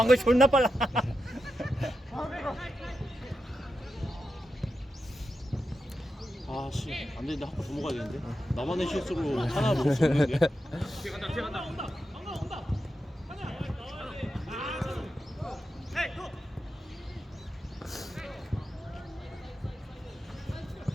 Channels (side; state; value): both; normal; correlation 0.88